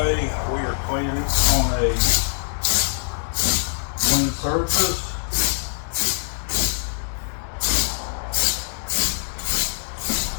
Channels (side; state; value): right; silent; digital silence